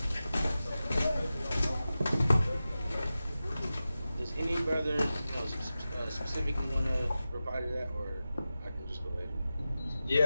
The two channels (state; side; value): inverted; both; correlation -0.94